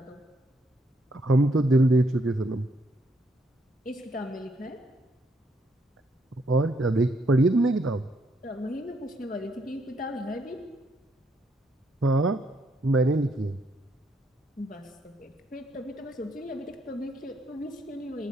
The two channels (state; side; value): normal; both; correlation 0.73